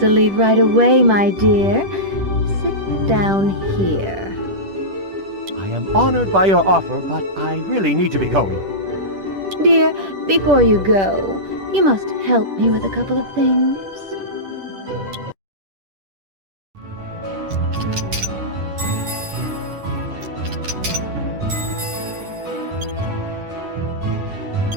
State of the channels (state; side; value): late; left; 10 ms